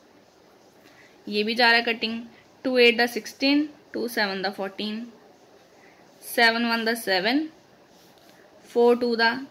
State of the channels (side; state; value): both; identical; correlation 1.00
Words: ये भी जा रहा है कटिंग। 2 8 16, 2 7 दा 14, 7 1 दा 7, 4 2 दा